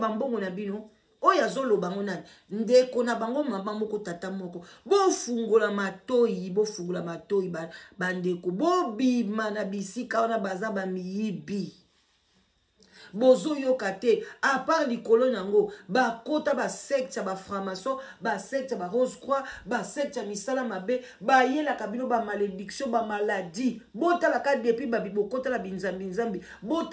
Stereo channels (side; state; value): both; identical; correlation 1.00